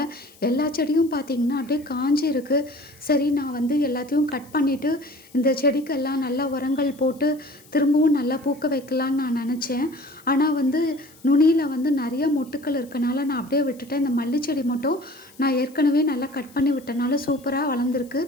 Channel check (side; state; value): left; noise; hiss, 26 dB below the sound